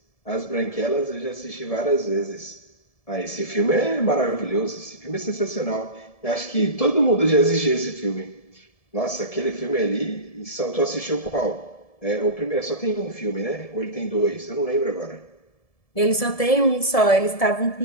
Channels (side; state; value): right; late; 1.7 ms